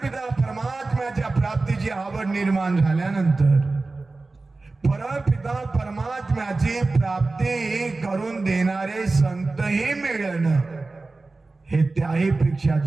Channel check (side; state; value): left; quieter; 3.5 dB